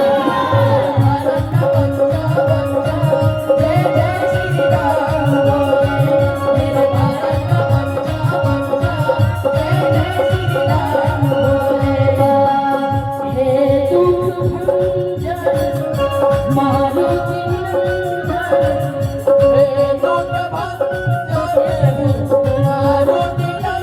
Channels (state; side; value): identical; both; correlation 1.00